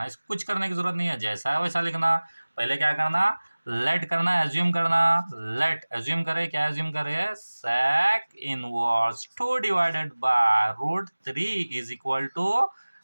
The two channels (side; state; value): both; inverted; correlation -1.00